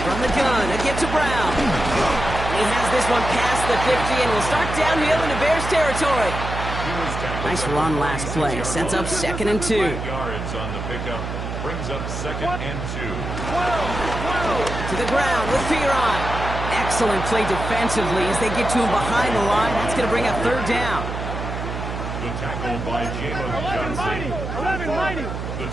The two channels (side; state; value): right; noise; hum, 5 dB below the sound